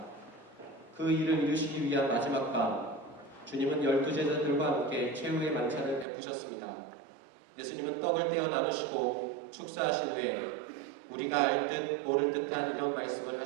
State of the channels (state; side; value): drops out; left; at 6.1 s